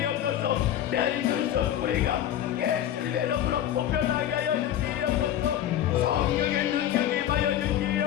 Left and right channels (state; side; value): quieter; right; 11.3 dB